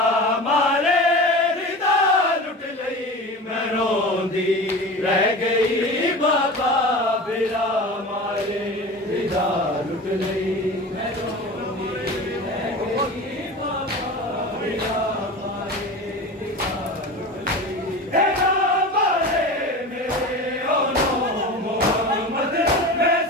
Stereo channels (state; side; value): normal; both; correlation 0.32